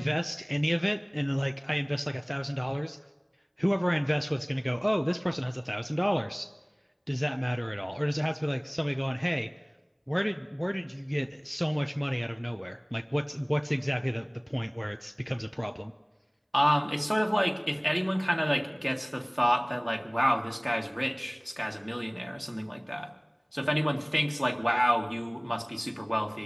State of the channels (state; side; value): identical; both; correlation 1.00